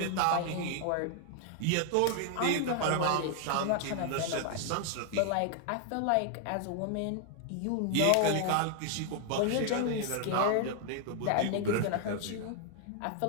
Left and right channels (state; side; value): different; both; correlation 0.00